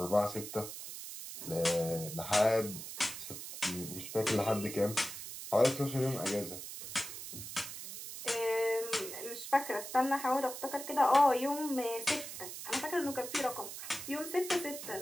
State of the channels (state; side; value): noise; right; hiss, 9 dB below the sound